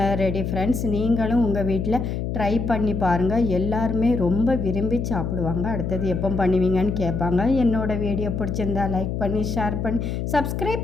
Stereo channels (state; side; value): noise; left; hum, 3 dB below the sound